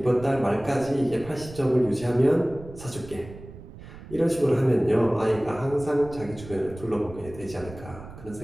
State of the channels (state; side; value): noise; right; rumble, 16 dB below the sound